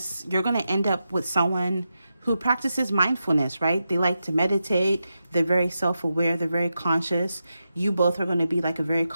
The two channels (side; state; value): both; inverted; correlation -0.88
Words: you're going to end up with someone who practices mindfulness, right? They like to meditate. They're very self-aware. They're very conscious. You both are going to be like a very